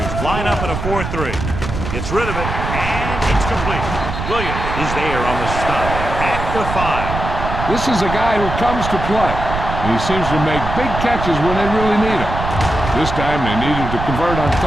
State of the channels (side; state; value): right; noise; rumble, 5 dB below the sound